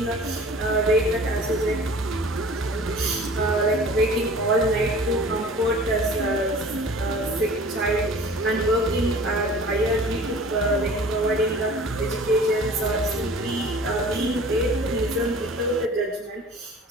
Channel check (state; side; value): normal; both; correlation 0.45